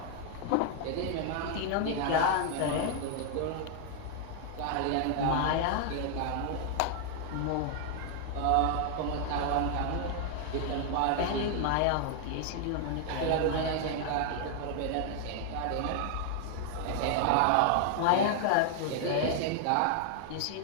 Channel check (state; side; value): different; both; correlation 0.00